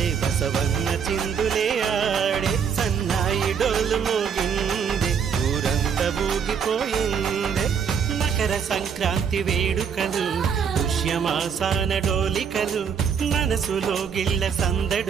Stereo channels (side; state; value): left; quieter; 7.0 dB